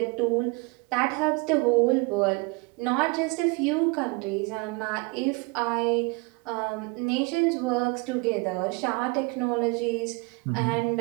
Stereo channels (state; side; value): quieter; left; 27.1 dB